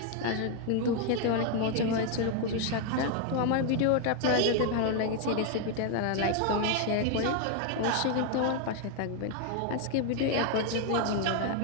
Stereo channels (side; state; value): both; different; correlation 0.00